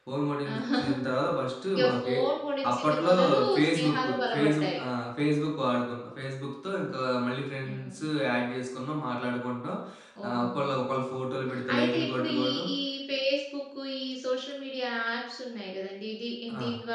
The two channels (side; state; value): both; identical; correlation 1.00